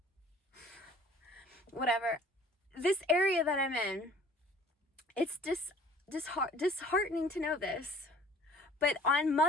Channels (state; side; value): normal; both; correlation 0.51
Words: Whatever, this area that I'm in, it's disheartening to know this, but on